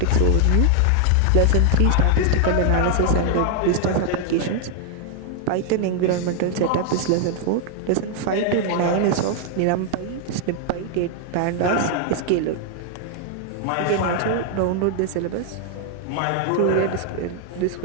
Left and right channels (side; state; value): both; different; correlation 0.00